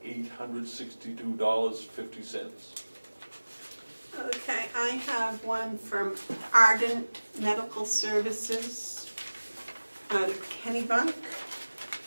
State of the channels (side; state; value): both; inverted; correlation -1.00